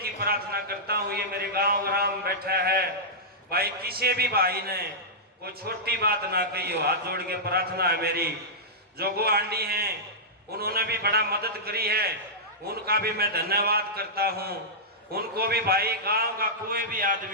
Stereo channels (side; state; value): both; normal; correlation -0.12